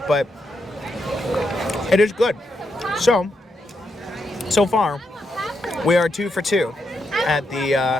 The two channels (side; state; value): both; normal; correlation 0.82